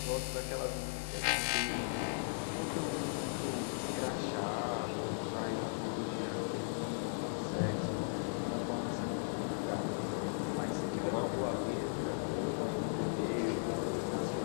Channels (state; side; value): silent; right; digital silence